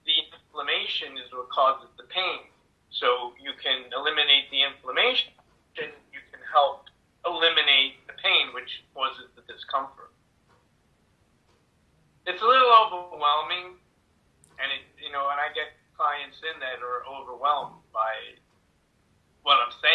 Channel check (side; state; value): both; identical; correlation 1.00